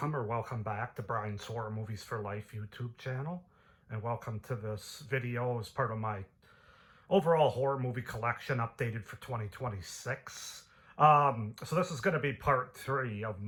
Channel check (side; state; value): both; identical; correlation 1.00